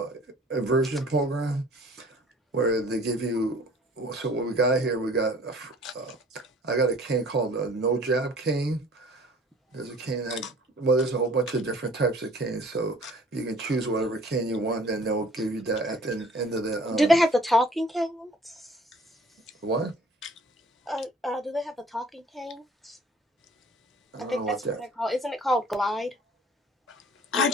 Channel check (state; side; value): normal; both; correlation 0.51